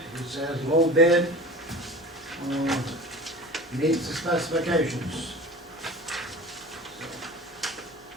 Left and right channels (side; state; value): both; normal; correlation 0.37